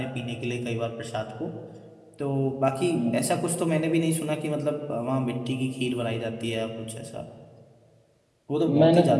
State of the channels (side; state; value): both; identical; correlation 1.00